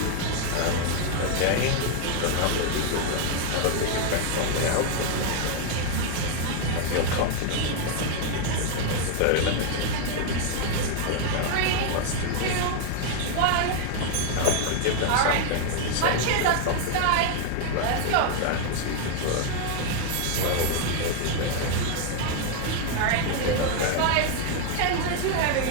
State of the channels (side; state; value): both; different; correlation 0.00